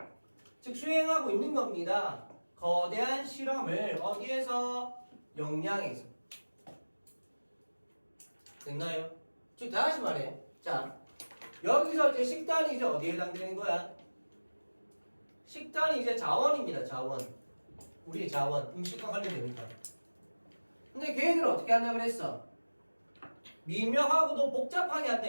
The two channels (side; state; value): both; inverted; correlation -1.00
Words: 즉 수행하고 있는 겁니다. 거대한 실험을 어디에서? 역량에서. 됐나요? 즉 다시 말해. 자, 여기서 이제 식단이 이제 어디에 해당되는 거야? 식단이 이제 자원입니다. 자원. 우리의 자원. 음식과 관련되니까. 근데 걔네들은 어떻게 한다 그랬어? 미묘하고도 복잡하게 한다